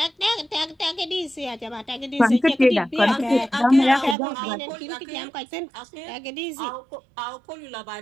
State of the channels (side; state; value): left; drops out; at 4.2 s